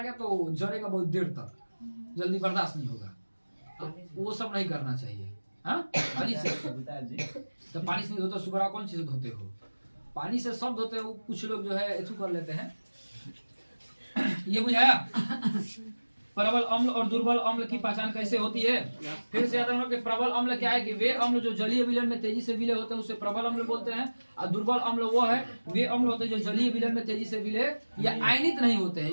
गया तो जलेगा बहुत देर तक, जल्दी बर्दाश्त नहीं होगा। तो वो सब नहीं करना चाहिए। हाँ, पानी से तो पानी से नहीं धोते, सुबह कौन चीज धोते हो? पानी से सब धोते हो। कुछ लोग जो है ऐसे कर लेते हैं ये बुझाया प्रबल अम्ल और दुर्बल अम्ल की पहचान कैसे होती है? फिर से याद रखना कि प्रबल अम्ल क्या है कि वे अम्ल जो जलीय विलयन में तेजी से विलय होते हैं उसे प्रबल अम्ल बोलते हैं, और दुर्बल अम्ल वो है वे अम्ल होते हैं जो जलीय विलयन में तेजी से विलय या आयनित नहीं होते हैं।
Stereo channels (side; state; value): both; inverted; correlation -1.00